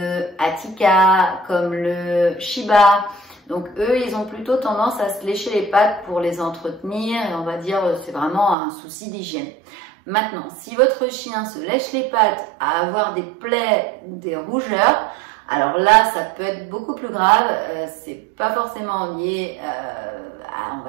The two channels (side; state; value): left; drops out; at 8.6 s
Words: Attika, comme le Shiba. Donc eux, ils ont plutôt tendance à se lécher les pattes pour les entretenir, et on va dire c'est vraiment un souci d'hygiène. Maintenant, si votre chien se lèche les pattes à avoir des plaies ou des rougeurs, alors là, ça peut être beaucoup plus grave. C'est pas forcément lié à, on